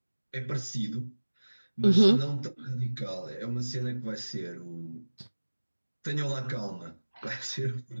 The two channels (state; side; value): inverted; both; correlation -1.00